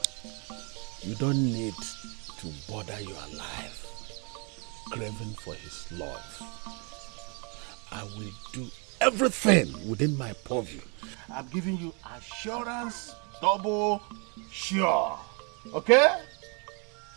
You don't need to bother your life craving for his love. I will do everything within my purview. I'm giving you assurance, double sure. Okay?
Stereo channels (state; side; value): quieter; left; 34.5 dB